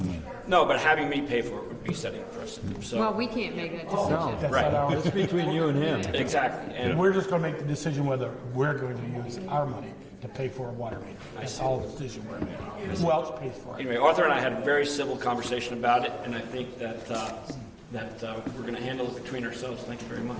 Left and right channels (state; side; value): identical; both; correlation 1.00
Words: No, but having me pay for it would be setting a precedent. So, Well, we can't make that decision. No, That's Right. not our it's between you and him. exactly. And we're just going to make the decision whether we're going to use our money to to pay for a water main. That's all the decision we're making. Who else pays for it? Anyway, Arthur and I had a very civil conversation about it, and I think that we're going to handle it between ourselves. Thank you very much.